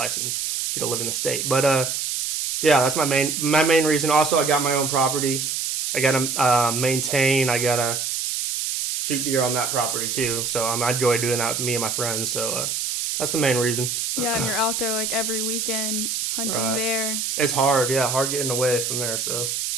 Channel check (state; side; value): noise; right; hiss, 2 dB below the sound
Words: if you don't live in the state. But yeah, that's my main reason. Also, I got my own property. I gotta maintain. I gotta shoot deer on that property too. So I enjoy doing that with me and my friends. So that's the main reason. Yeah, and you're out there like every weekend hunting there. It's hard. Yeah, hard getting away from there. So.